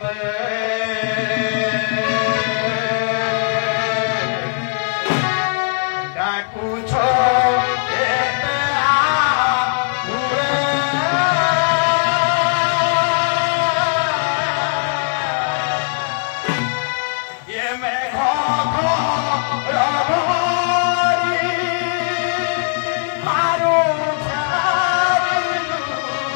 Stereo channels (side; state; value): right; silent; digital silence